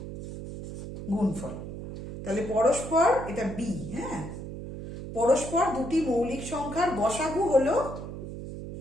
গুণফল। তাহলে পরস্পর, এটা বি, হ্যাঁ, পরস্পর দুটি মৌলিক সংখ্যার গসাগু হলো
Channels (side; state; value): right; noise; hum, 9 dB below the sound